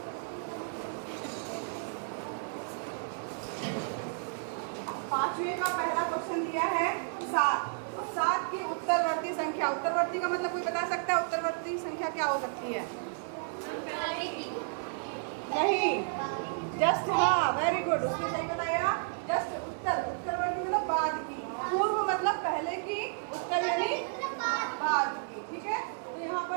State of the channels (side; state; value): left; silent; digital silence